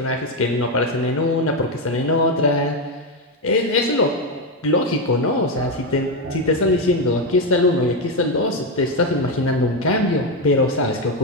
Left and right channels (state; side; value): normal; both; correlation 0.08